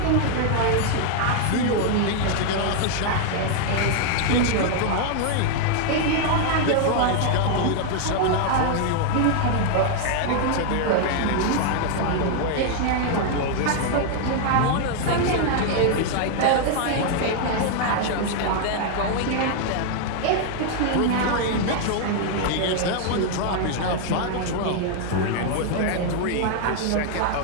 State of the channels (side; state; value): both; different; correlation 0.00